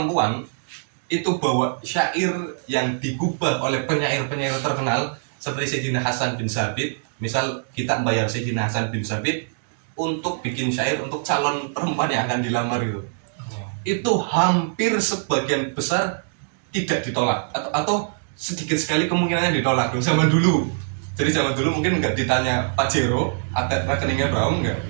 itu bawa syair yang digubah oleh penyair-penyair terkenal seperti Sayyidina Hasan bin Sabit. Misal kita membayar Sayyidina Hasan bin Sabit untuk bikin syair untuk calon perempuan yang akan dilamar gitu. Itu hampir sebagian besar tidak ditolak atau sedikit sekali kemungkinannya ditolak zaman dulu. Jadi zaman dulu mungkin nggak ditanya Pak Jero ada rekeningnya berapa enggak.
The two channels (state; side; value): silent; left; digital silence